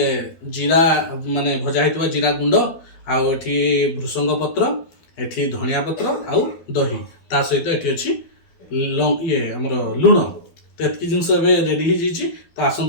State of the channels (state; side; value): late; right; 12 ms